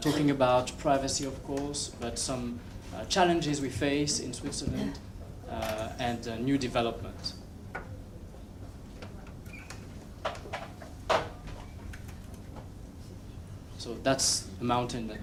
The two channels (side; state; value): both; identical; correlation 1.00